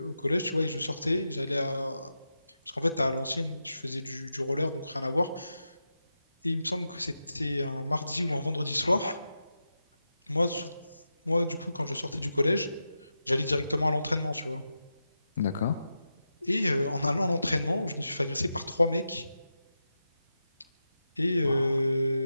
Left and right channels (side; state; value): both; inverted; correlation -0.89